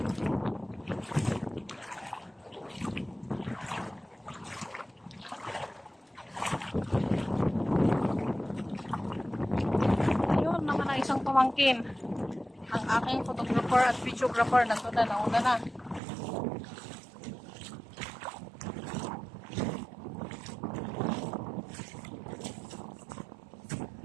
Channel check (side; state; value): left; drops out; at 16.0 s